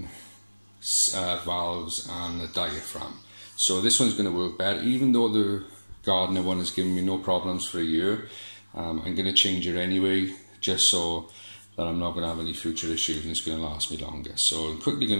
valves and a diaphragm. So this one's going to work better. Even though the Gardiner one has given me no problems for a year, I'm going to change it anyway, just so that I'm not going to have any future issues and it's going to last me longer. So I'm quickly going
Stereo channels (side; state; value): both; inverted; correlation -1.00